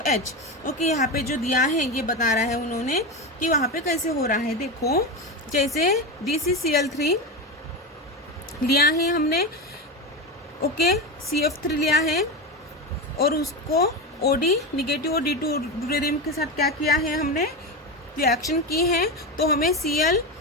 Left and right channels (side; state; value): both; normal; correlation 0.18